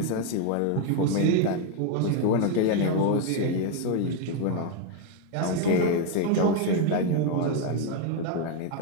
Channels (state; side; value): different; both; correlation 0.01